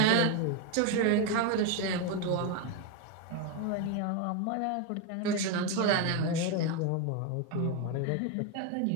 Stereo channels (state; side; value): different; both; correlation 0.02